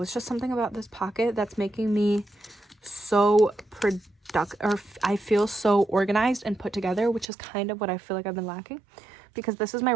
it's just something about this pocket that's making me so productive, or I feel so organized and put together, which is kind of what I feel like I've been lacking. Because this is my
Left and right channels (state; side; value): drops out; left; at 7.2 s